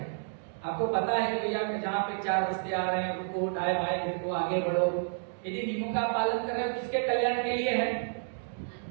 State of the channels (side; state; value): left; silent; digital silence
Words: आपको पता है कि भैया जहाँ पे 4 रस्ते आ रहे हैं, रुको, दाएं बाएं देखो, आगे बढ़ो। यदि नियमों का पालन कर रहे हो, किसके कल्याण के लिए है,